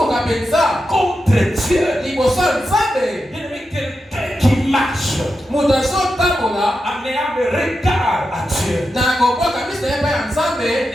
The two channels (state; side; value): normal; both; correlation 0.89